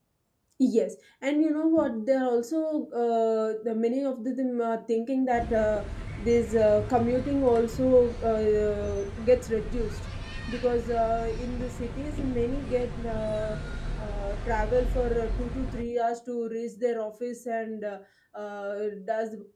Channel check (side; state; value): both; identical; correlation 1.00